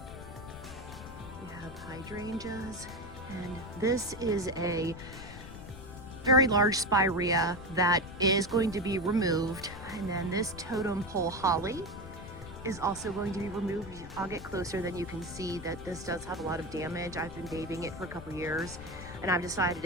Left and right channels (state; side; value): noise; left; rumble, 13 dB below the sound